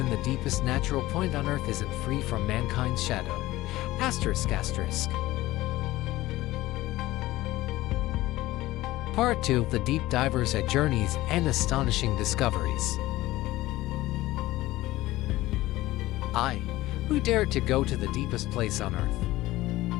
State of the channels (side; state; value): right; quieter; 17.4 dB